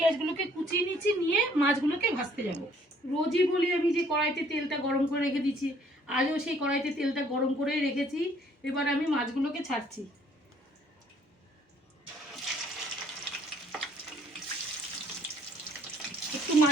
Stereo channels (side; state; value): both; normal; correlation 0.61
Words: কুচিয়ে নিচ্ছি, নিয়ে মাছগুলোকে ভাজতে যাব। রোজই বলি আমি যে কড়াইতে তেলটা গরম করে রেখে দিচ্ছি, আজও সেই কড়াইতে তেলটা গরম করেই রেখেছি। এবার আমি মাছগুলোকে ছাড়ছি। একটু